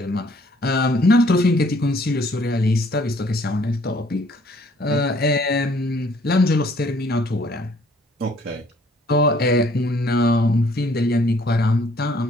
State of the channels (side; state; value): both; normal; correlation 0.61